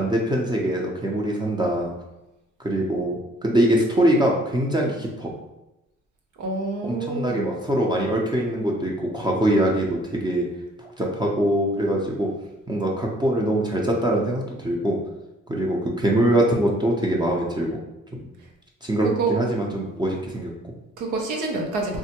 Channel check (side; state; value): both; normal; correlation 0.60